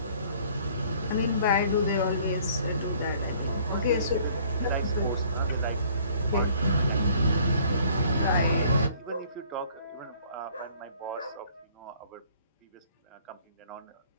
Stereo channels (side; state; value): both; inverted; correlation -0.57